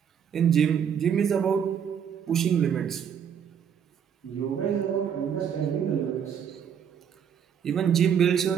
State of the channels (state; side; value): quieter; left; 8.1 dB